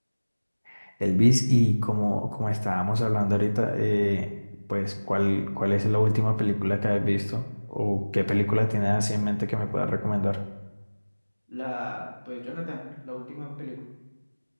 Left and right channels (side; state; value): both; inverted; correlation -1.00